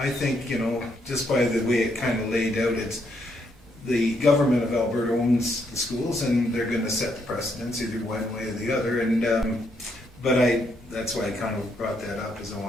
think, just by the way it kind of laid out, it's the government of Alberta owns the schools, and they're going to set the precedence either one way or the other. And but that's why I kind of brought that up, is I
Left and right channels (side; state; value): both; normal; correlation 0.75